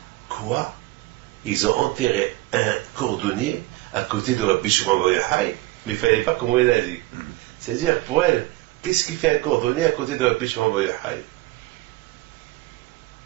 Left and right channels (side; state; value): left; quieter; 19.2 dB